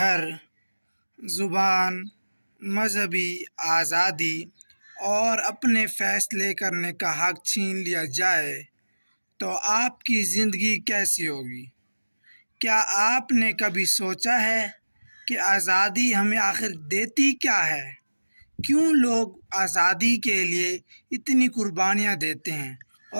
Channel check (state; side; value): inverted; both; correlation -1.00